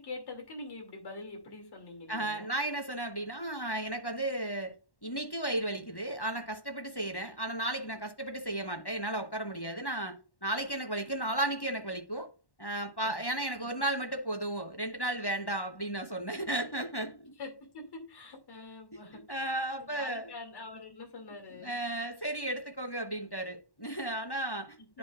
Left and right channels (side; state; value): right; late; 1.1 ms